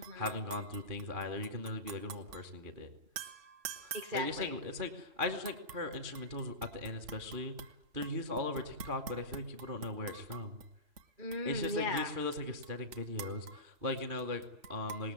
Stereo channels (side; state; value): left; late; 3.1 ms